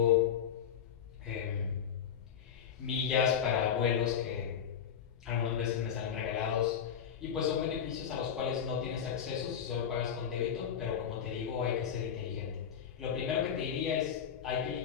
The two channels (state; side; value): quieter; right; 8.3 dB